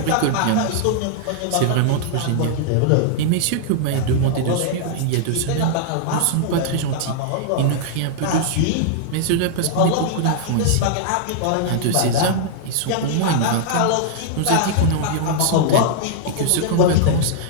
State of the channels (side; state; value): both; different; correlation -0.01